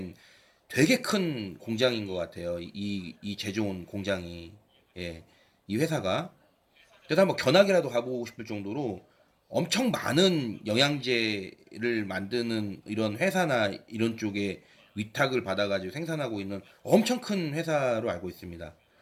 되게 큰 공장인 것 같아요. 이 제조원 공장이 예, 이 회사가 그래서 한번 견학이라도 가보고 싶을 정도로 엄청 많은 영양제를 만드는 이런 회사나 이런 쪽에 위탁을 받아가지고 생산하고 있는 엄청 큰 회사로 알고 있습니다.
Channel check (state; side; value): identical; both; correlation 1.00